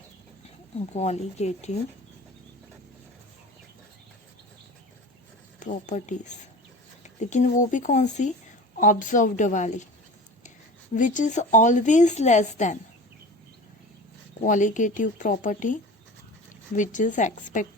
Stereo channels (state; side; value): normal; both; correlation 0.36